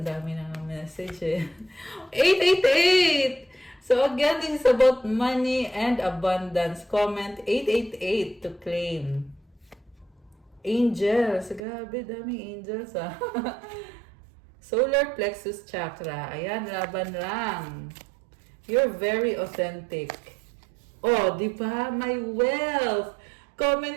dami na ng message eh. 888! So again, this is about money and abundance. Comment 888 to claim. Angels. Grabe, daming angels ah. Solar plexus chakra. Ayan, laban lang. You're very authentic. Oh, di ba? My wealth.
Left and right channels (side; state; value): left; drops out; at 11.6 s